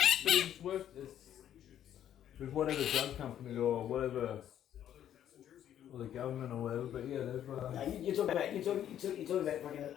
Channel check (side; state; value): right; quieter; 10.6 dB